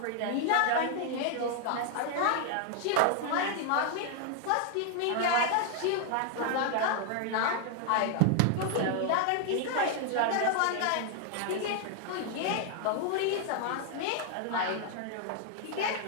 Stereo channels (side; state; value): both; different; correlation 0.00